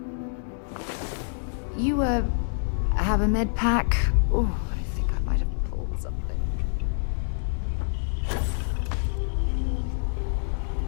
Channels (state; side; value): silent; right; 60 dB below the other